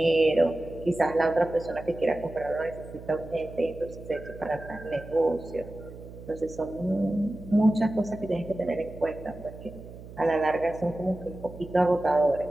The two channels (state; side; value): noise; right; hum, 15 dB below the sound